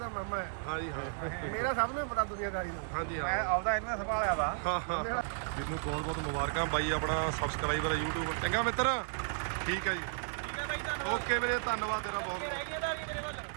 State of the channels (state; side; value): silent; left; digital silence